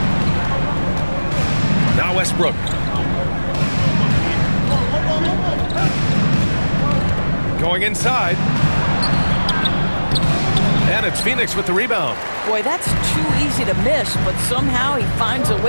Now Westbrook. Going inside. And it's Phoenix with the rebound. Boy, that's too easy to miss, but somehow he finds a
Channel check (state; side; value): inverted; both; correlation -1.00